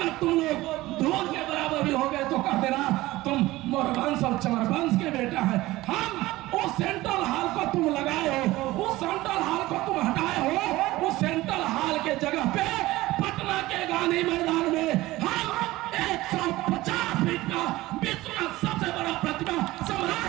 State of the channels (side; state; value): left; quieter; 18.1 dB